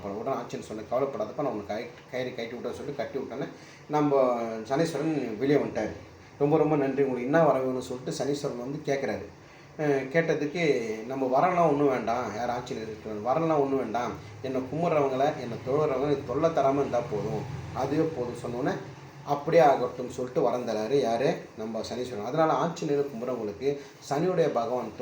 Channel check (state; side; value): identical; both; correlation 1.00